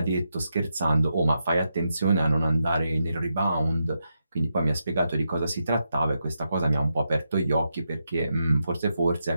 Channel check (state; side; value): inverted; both; correlation -0.84